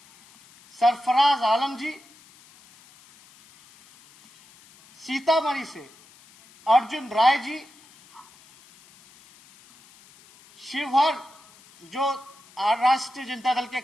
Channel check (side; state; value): left; noise; hiss, 26 dB below the sound